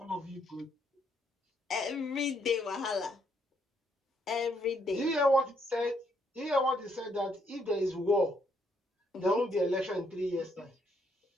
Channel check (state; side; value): normal; both; correlation 0.73